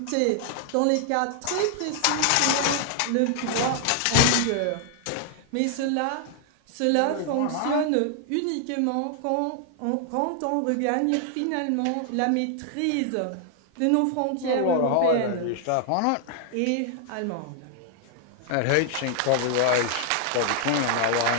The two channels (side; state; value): both; different; correlation 0.00